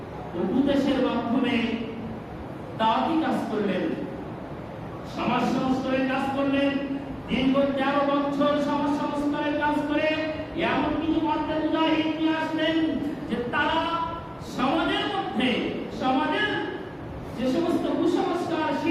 উপদেশের মাধ্যমে দাওয়াতি কাজ করলেন, সমাজ সংস্কারের কাজ করলেন। দীর্ঘ 13 বছর সমাজ সংস্কারের কাজ করে এমন কিছু মধ্যে মুজাহিদ নিয়ে আসলেন যে তারা সমাজের মধ্যে সমাজের যে সমস্ত কুসংস্কার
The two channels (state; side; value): identical; both; correlation 1.00